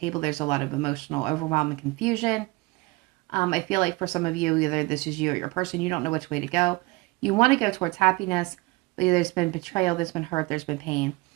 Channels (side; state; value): left; quieter; 23.5 dB